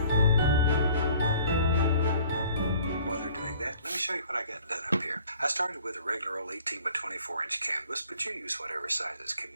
While they're doing that, let me show you what I got done up here. I started with a regular old 18 by 24 inch canvas, but you use whatever size is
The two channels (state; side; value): inverted; both; correlation -0.54